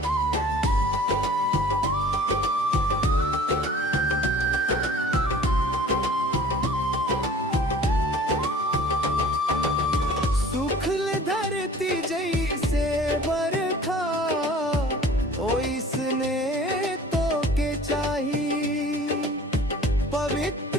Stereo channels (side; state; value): both; normal; correlation 0.47